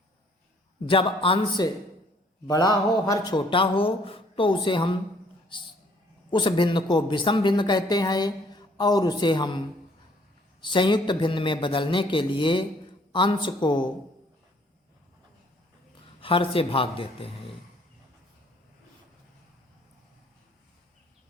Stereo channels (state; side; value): normal; both; correlation 0.61